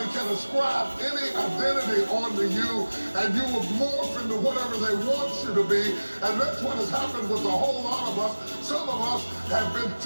can ascribe any identity onto you and you will morph into whatever they want you to be. And that's what has happened with a whole lot of us. Some of us have been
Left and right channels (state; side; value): inverted; both; correlation -1.00